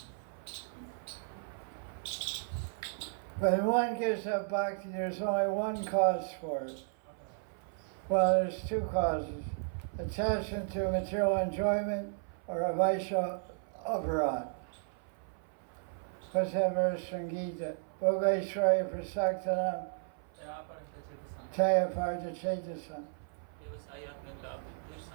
When one gives up bhakti, there's only one cause for it. Well, there's two causes. Attachment to material enjoyment or a vaisha aparad. What's that verse from Gita? Bhogaishraya prasaktanam taya parta chetasam.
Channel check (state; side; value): silent; left; 55 dB below the other